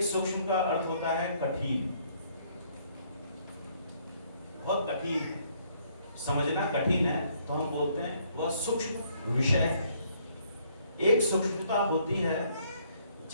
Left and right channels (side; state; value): both; inverted; correlation -0.66